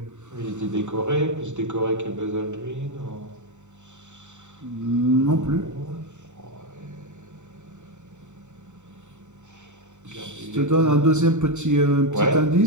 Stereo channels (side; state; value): left; late; 0.84 ms